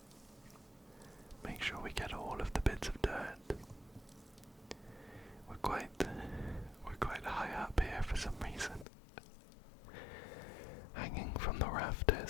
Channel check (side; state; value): right; drops out; at 8.8 s